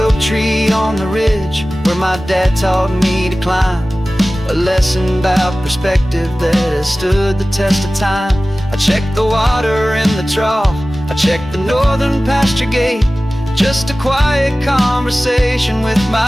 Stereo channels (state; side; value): normal; both; correlation 0.97